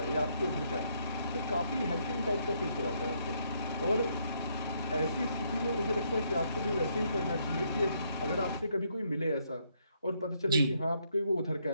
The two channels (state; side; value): inverted; both; correlation -0.73